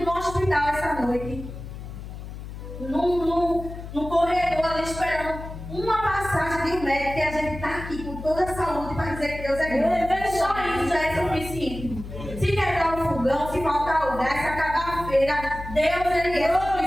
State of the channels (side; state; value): left; noise; hum, 11 dB below the sound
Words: do hospital essa noite? No corredor ali esperando uma passagem de um médico, que a gente está aqui com toda a saúde para dizer que Deus é grande. Só isso já é suficiente. Se quebrar o fogão, se faltar o gás, se acabar a feira, Deus ele é